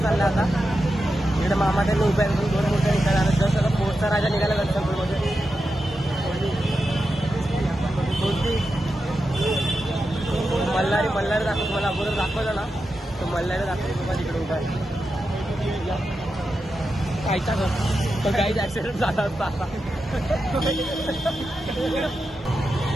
चालला आता. इकडे मामा त्यांनी उभ्या 2 मोठ्या निघाला. जसं आता पोटचा राजा निघाला गणसंकुलमध्ये. मल्हारी दाखवतो. मला अगोदर दाखवलं ना तो मल्हारी दाखवतो तुम्हाला तिकडे उभा आहे. कायचा तर काहीच ऍक्सिडेंट झाला असता.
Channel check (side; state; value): both; normal; correlation 0.89